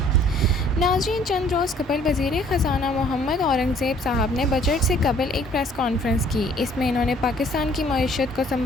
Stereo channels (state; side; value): normal; both; correlation 0.58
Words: ناظرین، چند روز قبل وزیر خزانہ محمد اورنگزیب صاحب نے بجٹ سے قبل ایک پریس کانفرنس کی۔ اس میں انہوں نے پاکستان کی معیشت کو